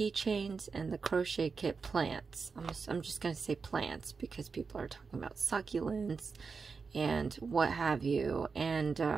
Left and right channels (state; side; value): quieter; left; 5.0 dB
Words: and the crochet kit plants. I'm just going to say plants because people are talking about succulents and what have you. And